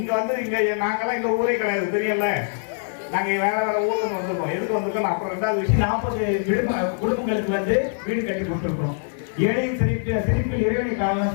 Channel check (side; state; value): right; silent; 63 dB below the other